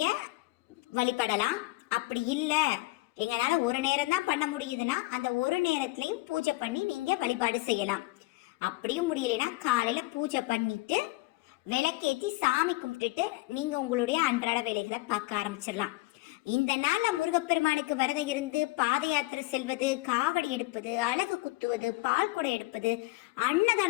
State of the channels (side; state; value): right; quieter; 21.2 dB